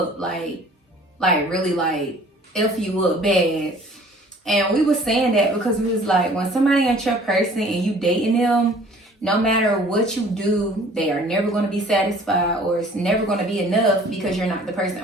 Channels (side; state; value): both; normal; correlation 0.52